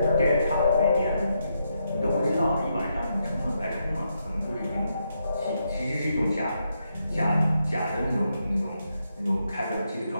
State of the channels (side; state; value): both; inverted; correlation -0.81